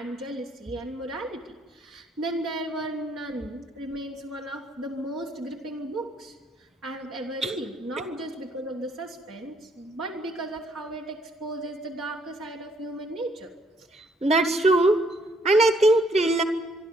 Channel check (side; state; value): both; normal; correlation 0.68